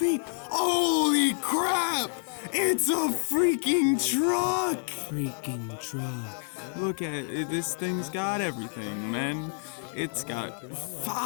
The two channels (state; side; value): silent; right; 59 dB below the other